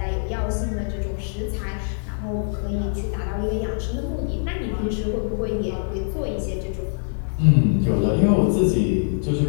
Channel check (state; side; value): silent; right; digital silence